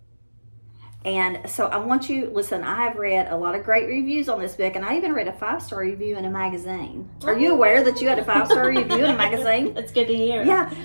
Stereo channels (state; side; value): inverted; both; correlation -1.00